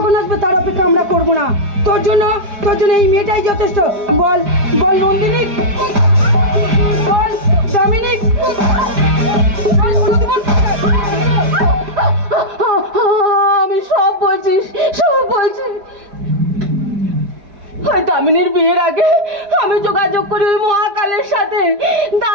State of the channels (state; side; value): late; left; 4.9 ms